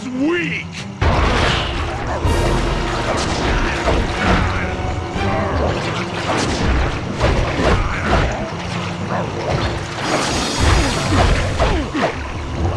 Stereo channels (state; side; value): identical; both; correlation 1.00